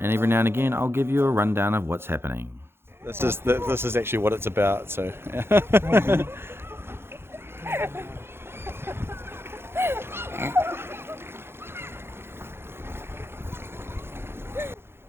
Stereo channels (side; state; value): left; late; 0.11 ms